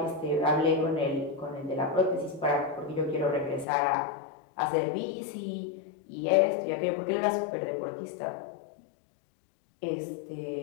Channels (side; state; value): right; drops out; at 3.7 s